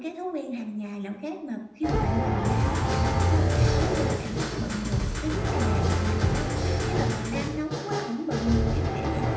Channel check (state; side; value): identical; both; correlation 1.00